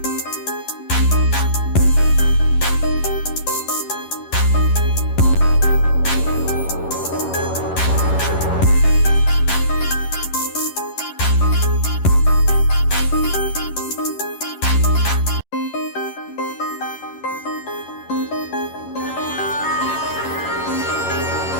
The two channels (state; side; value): late; right; 11 ms